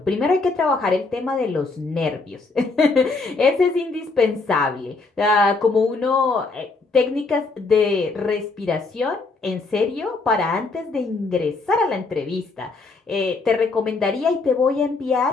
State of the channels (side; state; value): right; quieter; 3.8 dB